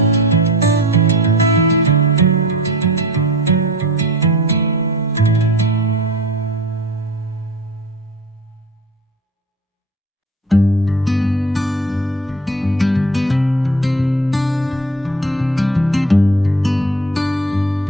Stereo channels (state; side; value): normal; both; correlation 0.38